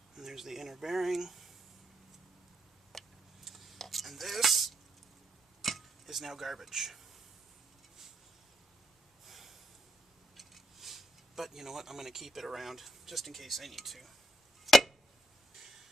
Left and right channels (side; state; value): both; normal; correlation 0.78